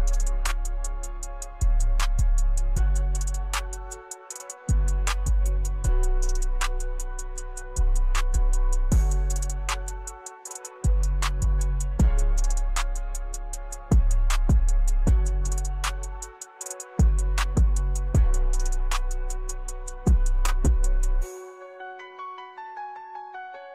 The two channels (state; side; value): identical; both; correlation 1.00